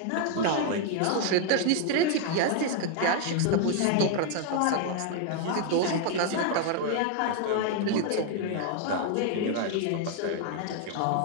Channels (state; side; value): different; both; correlation 0.00